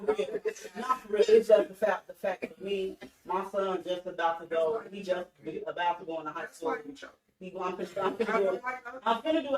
real. Not for real. It's just the fact that me, my son just about to go. He just about to go into high school. I'm gonna do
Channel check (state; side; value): identical; both; correlation 1.00